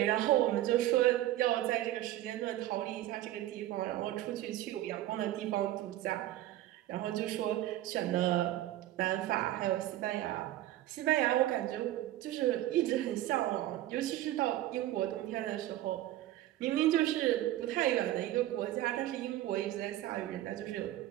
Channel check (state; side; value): quieter; left; 14.5 dB